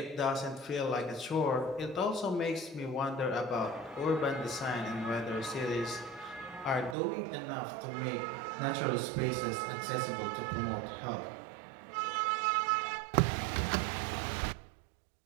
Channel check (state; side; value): drops out; left; at 7.0 s